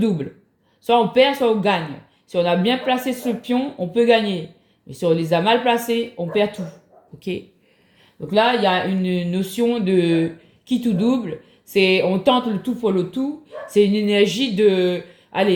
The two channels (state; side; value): identical; both; correlation 1.00